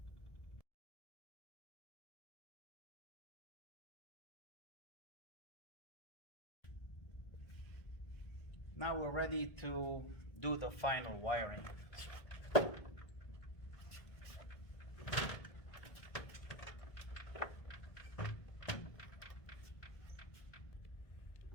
Now we're ready to do the final wiring.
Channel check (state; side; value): late; right; 1.7 ms